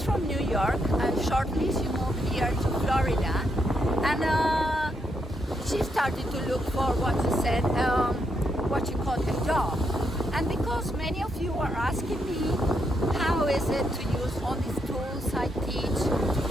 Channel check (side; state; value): both; normal; correlation 0.79